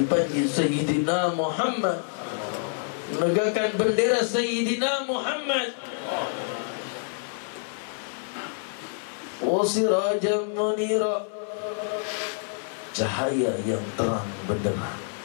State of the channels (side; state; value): right; silent; digital silence